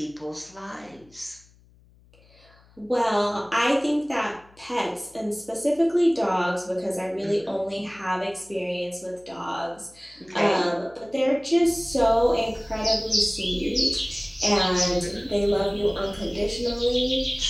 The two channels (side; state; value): left; noise; hum, 29 dB below the sound